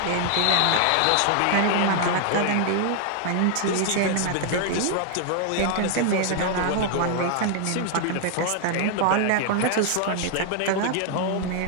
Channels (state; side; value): different; both; correlation 0.00